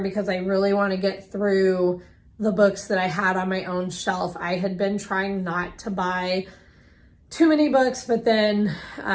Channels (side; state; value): both; identical; correlation 1.00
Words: because I really want to get through the books that I had on my own shelf. I had been trying not to buy too many books, but then,